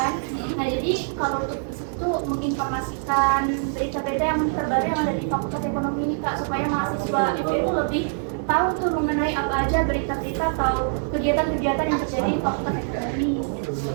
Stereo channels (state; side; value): silent; left; 62 dB below the other